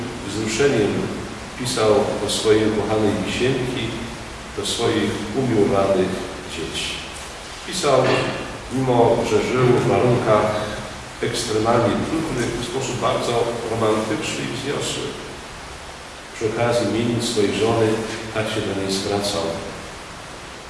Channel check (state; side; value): identical; both; correlation 1.00